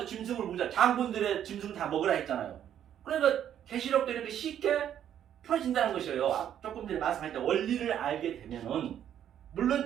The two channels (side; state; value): left; quieter; 10.1 dB